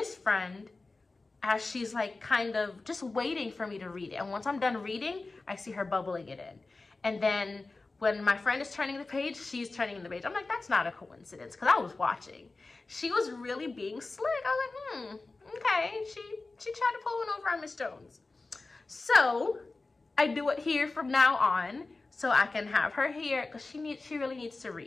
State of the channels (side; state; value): right; quieter; 3.5 dB